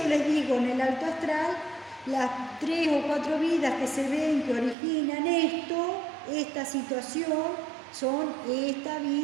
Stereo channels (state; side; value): drops out; left; at 4.8 s